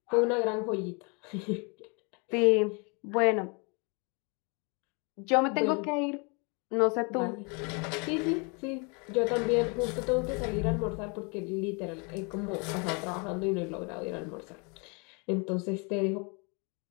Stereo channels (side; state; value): right; quieter; 32.9 dB